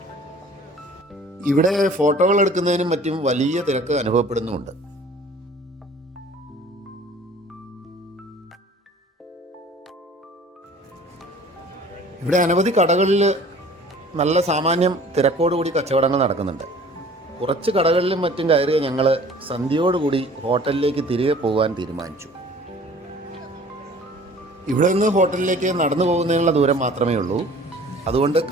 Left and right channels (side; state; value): both; normal; correlation 0.49